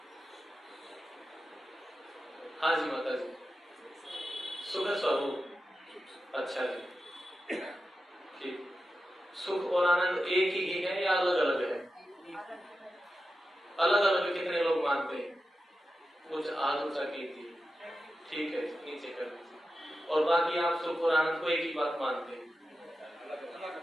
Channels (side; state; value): both; normal; correlation 0.91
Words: हाँ जी माता जी, सुख स्वरूप, अच्छा जी, ठीक। सुख और आनंद एक ही है या अलग अलग है? अलग अलग कितने लोग मानते हैं? कुछ हाथ ऊंचा की थी, ठीक है नीचे कर दीजिए। और बाकी आप सुख और आनंद को एक ही बात मानते हैं?